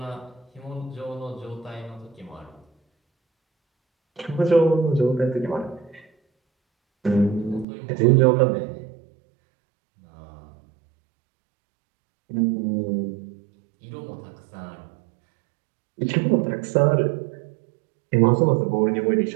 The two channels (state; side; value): drops out; left; at 7.7 s